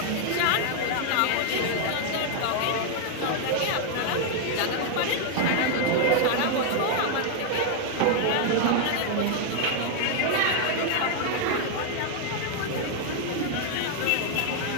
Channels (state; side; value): different; both; correlation 0.00